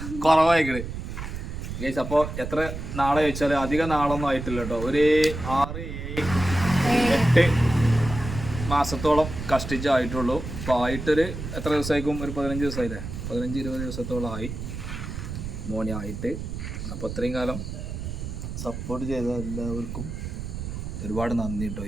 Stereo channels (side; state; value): right; noise; rumble, 7 dB below the sound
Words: കുറവായിക്കണ് ഗൈസ്. അപ്പോൾ എത്ര നാളെ ചോദിച്ചാൽ അധികം നാളൊന്നും ആയിട്ടില്ല കേട്ടോ. ഒരു 6-8 മാസത്തോളം കഷ്ടിച്ചായിട്ടുള്ളൂ. അപ്പോൾ ആയിട്ടൊരു എത്ര ദിവസമായിരിക്കും? ഒരു 15 ദിവസമായില്ലേ? 15-20 ദിവസത്തോളം ആയി മോനെ ആയിട്ട്. അപ്പോൾ അത്രയും കാലം സപ്പോർട്ട് ചെയ്ത എല്ലാവർക്കും ഒരുപാട് നന്ദി കേട്ടോ.